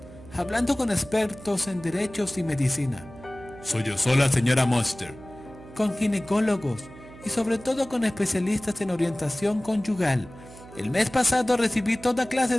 hablando con expertos en derechos y medicina. Sollozó la señora Monster. Con ginecólogos y sobre todo con especialistas en orientación conyugal. El mes pasado recibí toda clase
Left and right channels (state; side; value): noise; right; hum, 18 dB below the sound